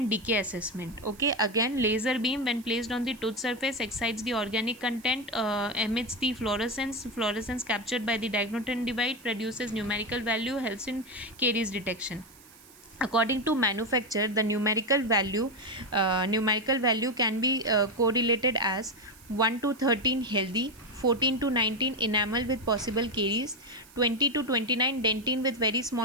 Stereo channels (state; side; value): noise; right; hiss, 24 dB below the sound